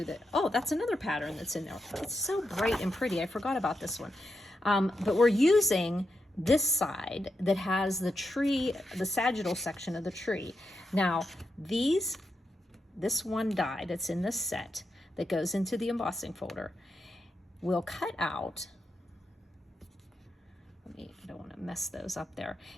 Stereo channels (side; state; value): both; normal; correlation 0.86